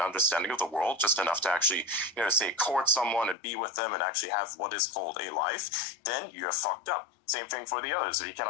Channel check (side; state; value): right; drops out; at 3.4 s